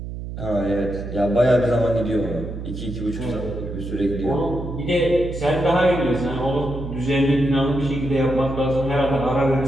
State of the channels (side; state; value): right; noise; hum, 8 dB below the sound